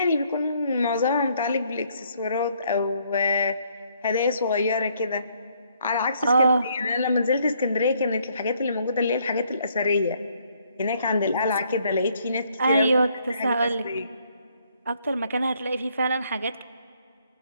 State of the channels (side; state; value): both; inverted; correlation -0.68